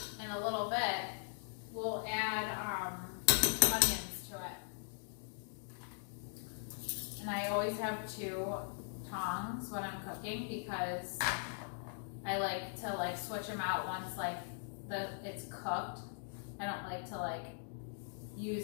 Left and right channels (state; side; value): silent; right; digital silence